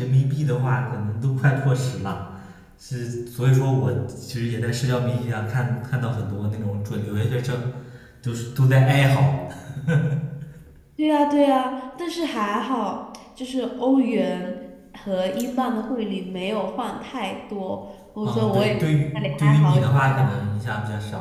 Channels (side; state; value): both; identical; correlation 1.00